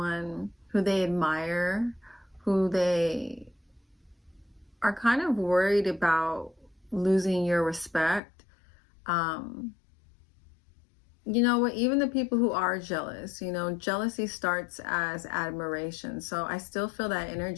who they admire, who they are kind of worried about losing your respect. Even the people who are jealous, jealousy starts as admiration. So I still feel that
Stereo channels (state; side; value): drops out; right; at 8.2 s